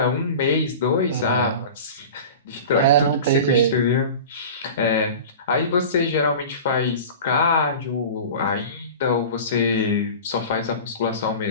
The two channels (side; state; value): both; inverted; correlation -0.35